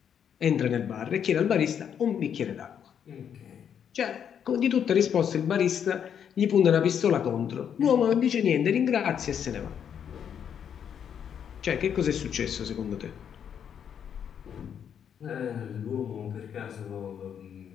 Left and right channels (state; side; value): quieter; right; 8.3 dB